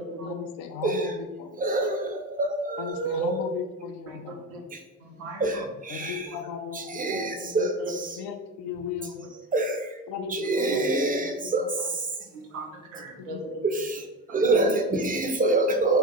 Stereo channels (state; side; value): normal; both; correlation 0.23